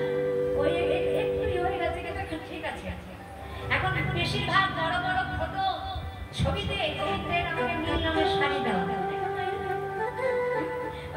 ওই বেশিরভাগ বড় বড় ফটো ছবিতে গোবিন্দের আমাকে নীল রঙের শাড়ি দেওয়া,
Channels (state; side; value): identical; both; correlation 1.00